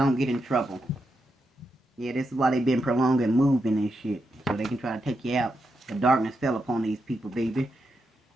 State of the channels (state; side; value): normal; both; correlation 0.85